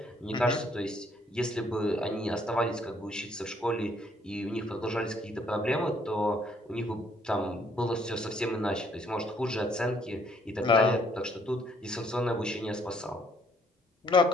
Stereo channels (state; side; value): normal; both; correlation 0.65